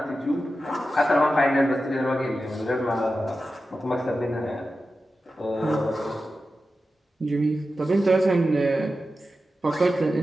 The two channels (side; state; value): both; normal; correlation 0.92